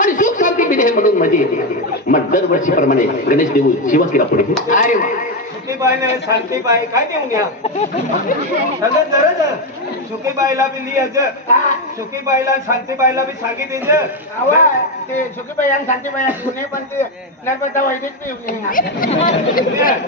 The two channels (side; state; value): both; normal; correlation 0.09